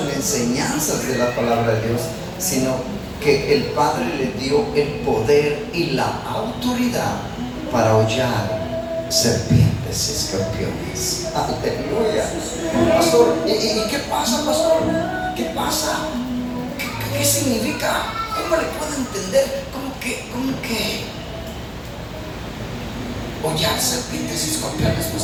en enseñanzas de la palabra de Dios, sino que el Padre le dio el poder y la autoridad para hollar serpientes y escorpiones. Aleluya. Pastor, ¿y qué pasa, pastor? ¿Qué pasa? ¿Qué significa? ¿Cómo le puedo entender? ¿Cómo que hollar serpientes y escorpiones,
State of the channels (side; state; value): both; identical; correlation 1.00